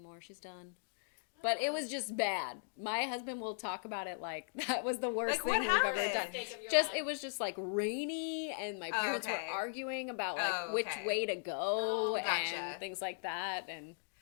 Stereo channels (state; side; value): silent; right; digital silence